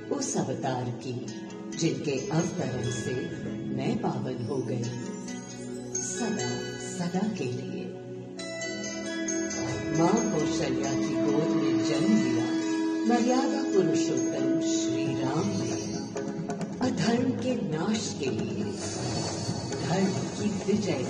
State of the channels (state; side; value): identical; both; correlation 1.00